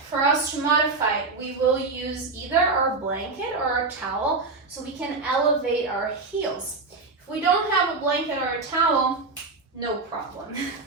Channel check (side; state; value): left; quieter; 3.9 dB